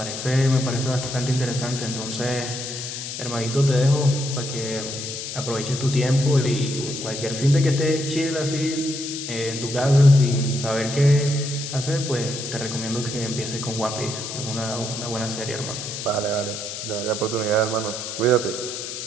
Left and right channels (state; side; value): noise; left; hiss, 7 dB below the sound